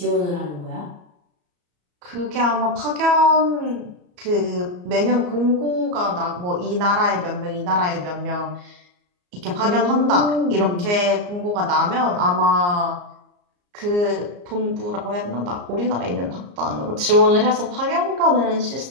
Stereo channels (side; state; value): left; late; 34 ms